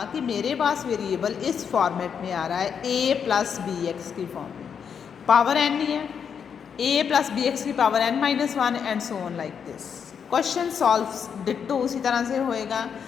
कि मेरे पास वेरिएबल इस फॉर्मेट में आ रहा है a प्लस बी एक्स की फॉर्म में, पावर n ही है, a प्लस बी एक्स की power n-1 and so on like this. Question solve ditto उसी तरह से होएगा।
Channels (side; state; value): right; quieter; 7.2 dB